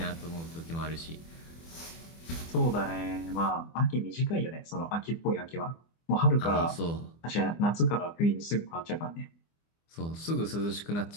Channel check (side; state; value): right; late; 24 ms